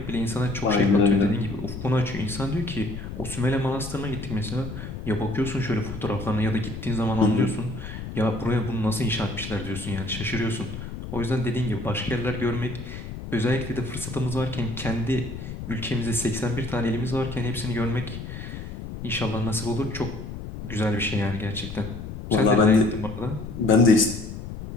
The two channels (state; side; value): noise; left; rumble, 9 dB below the sound